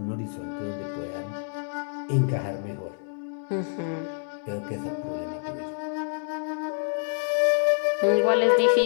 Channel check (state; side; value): silent; right; 60 dB below the other